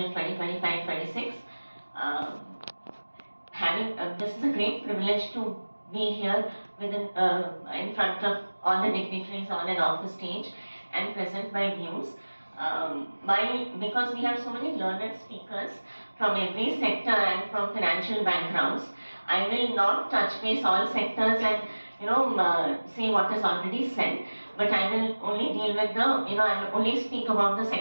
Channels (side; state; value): both; inverted; correlation -1.00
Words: 2025-26. This is a great privilege to be here in front of all the dignitaries on and off the stage and present my views. Because we have so many learned speakers from every sector and from financial backgrounds, I will not touch base all sectors and say what is already said, but I will only deal with I will only speak about the